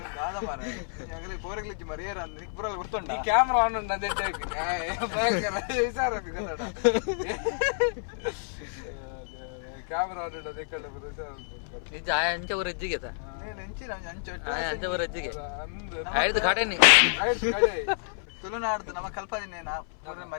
ಕಾದ ಮಾರೆ ಆಗಲೇ ಪೋರೆಗ್ಲಿಚ್ಚಿ ಮರಿ ಏರ ಅಂದ್ರೆ ಪುರಲ್ ಗುರ್ತುಂಡ ಈ ಕ್ಯಾಮೆರಾ ಆನ್ ಉಂಡ ಅದೇ ಭಯಂಕರ ವಿಚಾರ ಕ್ಯಾಮೆರಾ ಆನ್ ಉಂಡ ಅದೇ ಕಡೆ ఇది అంచ ఊరు ఎజ్జిగేత నేను ఎంచి ಅಂಚ అంచ ఊరు ఎజ్జిಗೆ ఐదు కాటేని ತುಳುನಾಡ್ದು ನಮ್ಮ ಕಲ್ಪದಿನೇನ ಪೂರ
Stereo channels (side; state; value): right; silent; 59 dB below the other